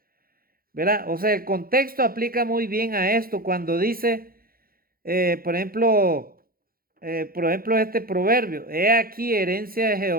¿verdad? O sea, el contexto aplica muy bien a esto cuando dice, por ejemplo, este proverbio: he aquí, herencia de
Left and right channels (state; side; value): late; left; 0.42 ms